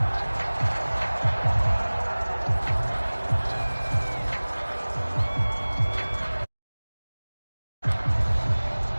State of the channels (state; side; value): inverted; both; correlation -1.00